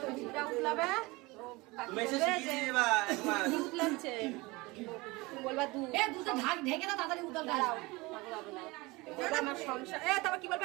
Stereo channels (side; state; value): left; quieter; 23.1 dB